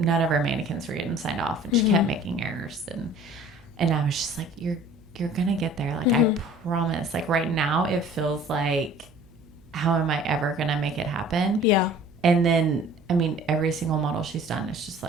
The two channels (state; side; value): noise; right; hum, 27 dB below the sound